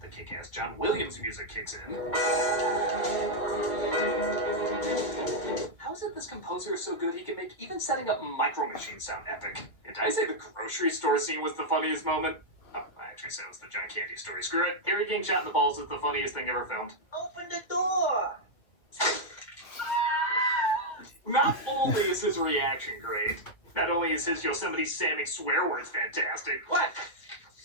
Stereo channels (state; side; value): late; right; 2.0 ms